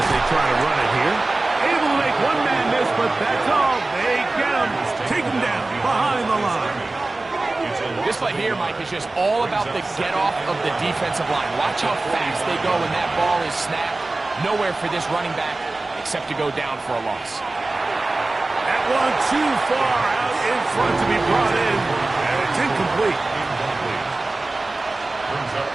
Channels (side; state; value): left; quieter; 3.1 dB